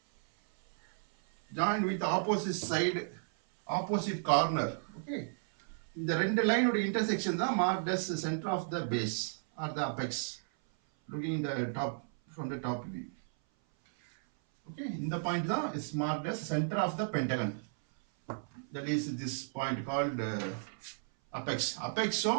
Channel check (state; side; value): silent; left; 55 dB below the other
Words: Join with the opposite side, opposite corner. Okay. The ரெண்டு line ஓட intersection தான் marked as the center of the base or the apex. Looking in the top from the top view. Okay. இந்த point தான் is marked as center of the pentagon. That is this point called apex. Apex so